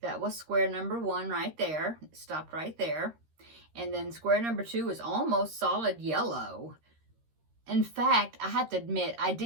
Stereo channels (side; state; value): left; late; 13 ms